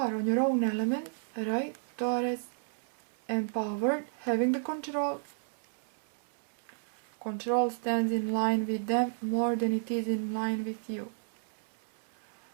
on your own element, right? Taurus, empowered, having the control. Control stands in line with them more than it is in line with you.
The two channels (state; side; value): silent; left; 56 dB below the other